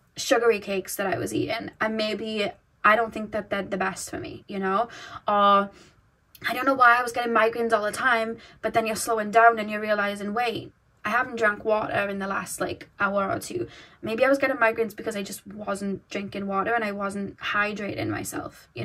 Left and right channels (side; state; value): both; identical; correlation 1.00